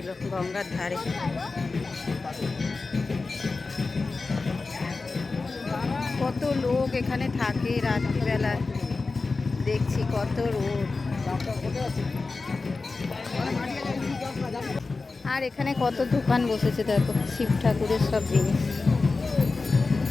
গঙ্গার ধারে। কত লোক এখানে থাকে রাত্রিবেলা, দেখছি কত রোদ। আর এখানে কত দোকান বসেছে দেখো, শিব ঠাকুরের সব জিনিস।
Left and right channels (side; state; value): right; quieter; 3.9 dB